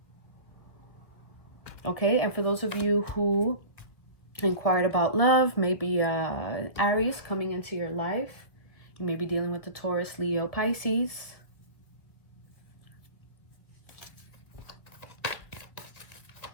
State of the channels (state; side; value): late; right; 1.7 ms